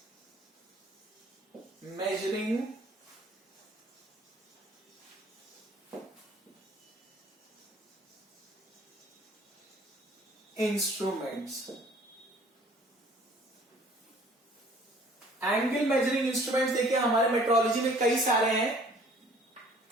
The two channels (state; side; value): normal; both; correlation 0.54